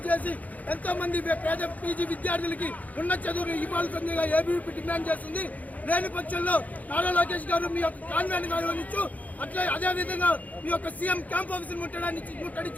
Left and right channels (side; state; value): right; late; 0.076 ms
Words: చేసి ఎంతో మంది పేద పీజీ విద్యార్థులకి ఉన్నత చదువులు ఇవ్వాల్సిందిగా ఏబీవీపీ డిమాండ్ చేస్తుంది. లేని పక్షంలో నారా లోకేష్ గారు మీ యొక్క కాన్వెంట్ నిర్వహించు అట్లా అదేవిధంగా మీ యొక్క సీఎం క్యాంప్ ఆఫీసులు